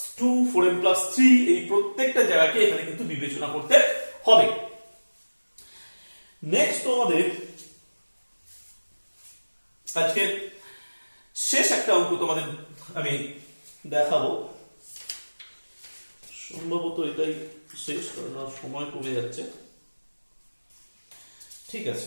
2, 4m plus 3, এই প্রত্যেকটা জায়গাকে এখানে কিন্তু বিবেচনা করতে হবে। নেক্সট তোমাদের আজকে শেষ একটা অঙ্ক তোমাদের আমি দেখাবো, সম্ভবত এটাই শেষ, কারণ আর সময় কমে যাচ্ছে। ঠিক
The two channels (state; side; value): inverted; both; correlation -1.00